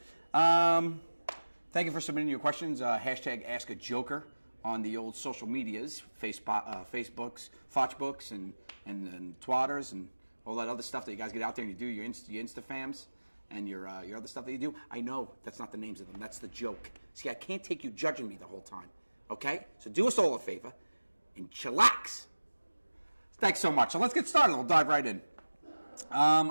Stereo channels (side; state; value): both; inverted; correlation -1.00